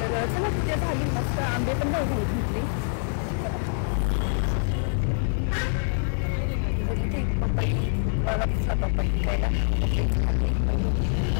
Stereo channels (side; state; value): right; silent; 61 dB below the other